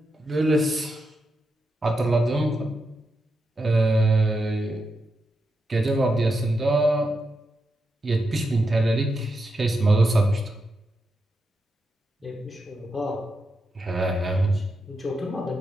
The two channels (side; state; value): both; normal; correlation 0.86